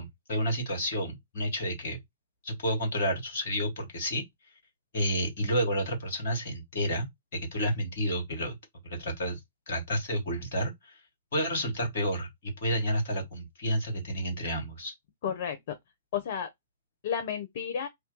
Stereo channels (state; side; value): inverted; both; correlation -0.62